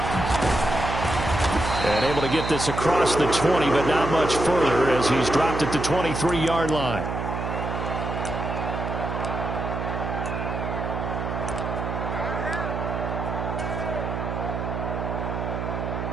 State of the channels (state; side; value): noise; right; hum, 4 dB below the sound